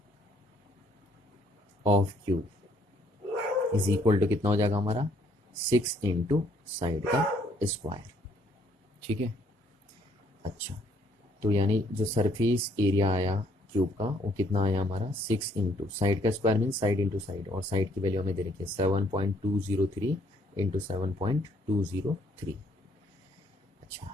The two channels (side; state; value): both; normal; correlation 0.66